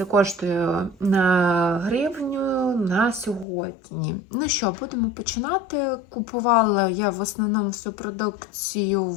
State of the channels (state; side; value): drops out; right; at 3.5 s